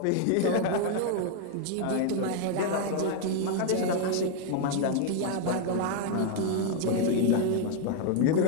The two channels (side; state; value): both; different; correlation 0.00